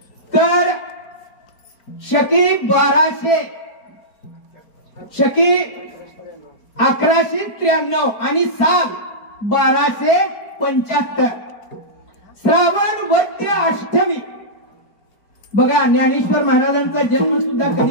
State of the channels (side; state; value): right; late; 4.8 ms